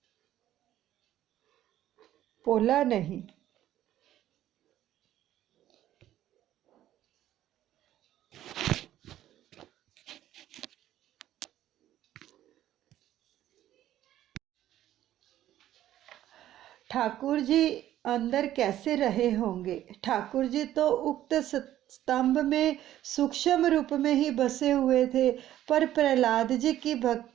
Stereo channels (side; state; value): left; quieter; 12.8 dB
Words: पोला नहीं। ठाकुर जी अंदर कैसे रहे होंगे। ठाकुर जी तो उक्त स्तंभ में सूक्ष्म रूप में ही बसे हुए थे, पर प्रहलाद जी की